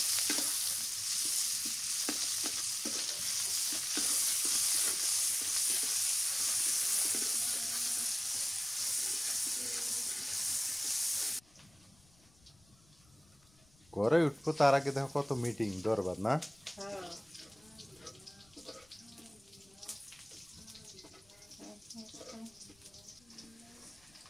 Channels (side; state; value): left; noise; rumble, 29 dB below the sound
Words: ঘরে উঠবো তার আগে দেখো কত মিটিং দরবার না। হ্যাঁ,